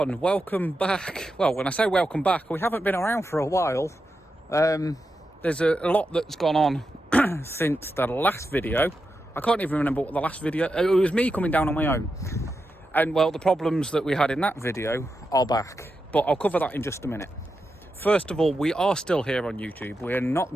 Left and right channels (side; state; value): both; normal; correlation 0.88